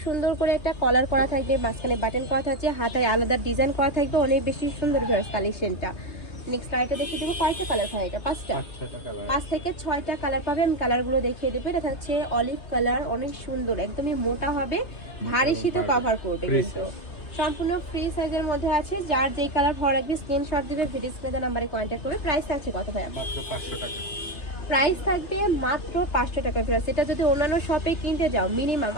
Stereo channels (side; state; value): right; late; 2.9 ms